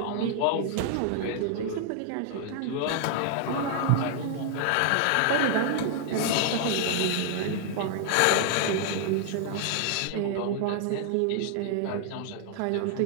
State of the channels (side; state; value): both; different; correlation 0.00